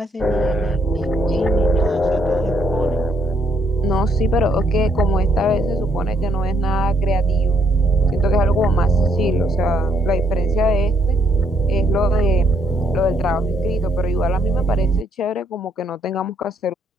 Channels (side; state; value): both; normal; correlation 0.71